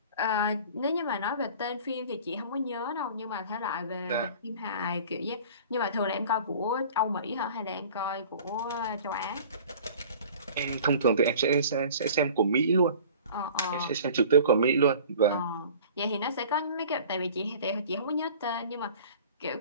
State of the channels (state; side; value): inverted; both; correlation -0.44